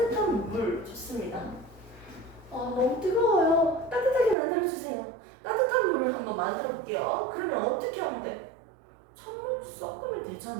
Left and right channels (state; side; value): drops out; left; at 4.4 s